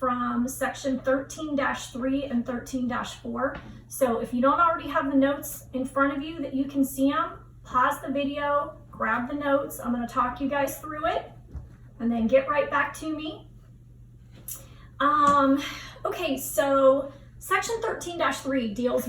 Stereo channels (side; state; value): both; identical; correlation 1.00